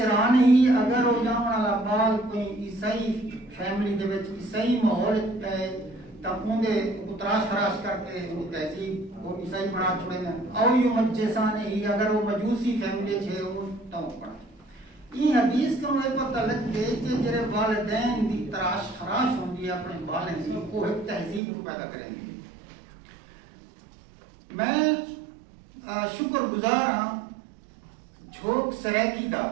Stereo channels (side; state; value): left; drops out; at 21.4 s